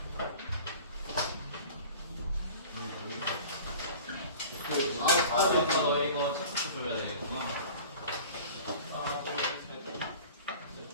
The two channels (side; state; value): both; inverted; correlation -0.42